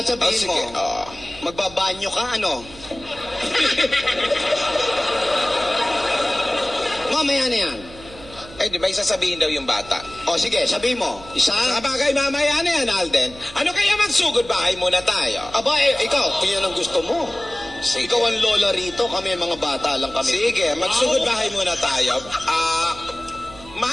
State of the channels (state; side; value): noise; right; hum, 19 dB below the sound